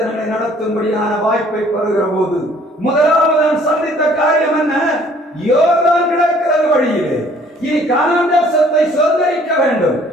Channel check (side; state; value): both; normal; correlation 0.58